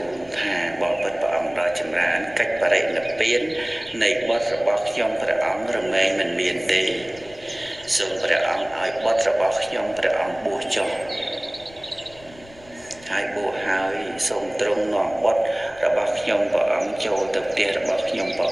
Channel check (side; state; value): left; noise; rumble, 23 dB below the sound